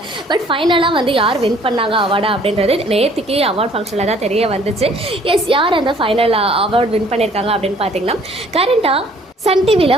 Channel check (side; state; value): both; normal; correlation 0.57